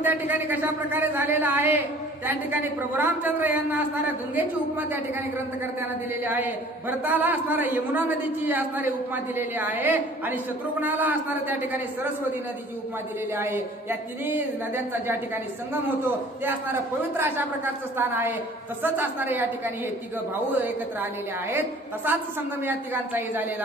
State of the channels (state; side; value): normal; both; correlation 0.50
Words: त्या ठिकाणी कशा प्रकारे झालेला आहे त्या ठिकाणी प्रभू रामचंद्र यांना असणाऱ्या गंगेची उपमा त्या ठिकाणी ग्रंथकर्त्यांना दिलेली आहे. भरताला असणाऱ्या यमुना नदीची असणारी उपमा दिलेली आहे आणि शत्रुघ्नाला असणाऱ्या त्या ठिकाणी सरस्वती नदीची उपमा दिलेली आहे. या तिन्ही नद्यांचा ज्या ठिकाणी संगम होतो ते असणारं पवित्र अशा प्रकारचं स्थान आहे. तसंच असणारे या ठिकाणी हे तिघ भाऊ एकत्र आलेले आहेत, तसाच संगम या तिघांचाही